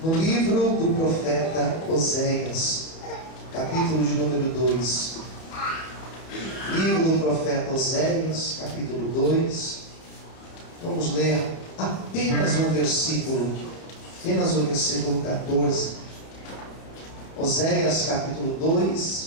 livro do profeta Oséias, capítulo de número 2. Livro do profeta Oséias, capítulo 2. Vamos ler apenas o versículo 14. Oséias, capítulo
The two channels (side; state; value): right; late; 30 ms